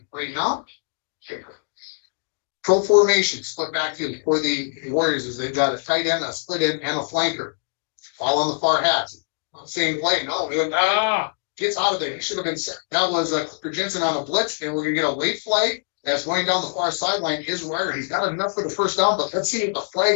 right now. Pro formation, split backfield for the Warriors is they've got a tight end, a split end, and a flanker. All on the far hats. Same play. No, gets out of there. He should have been set. That was Cooper Jensen on a blitz, and we're going to get a late flag that's going down the far sideline. Is Wire. He's got enough for the first down, but let's see what the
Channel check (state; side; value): silent; right; digital silence